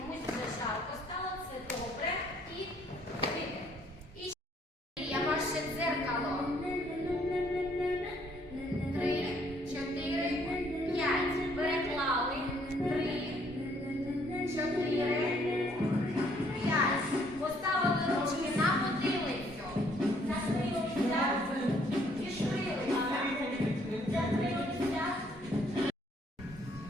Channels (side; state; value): both; normal; correlation 0.65